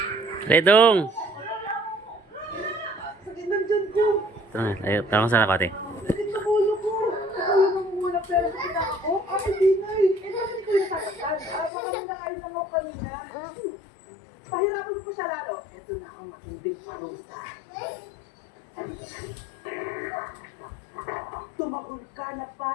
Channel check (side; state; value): right; drops out; at 11.7 s